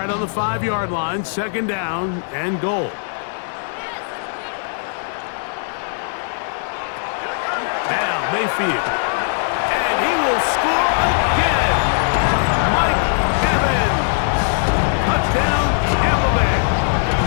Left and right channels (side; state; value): right; silent; 66 dB below the other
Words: on the 5-yard line, second down and goal. Now Mayfield, and he will score again. Mike Evans, touchdown Tampa Bay.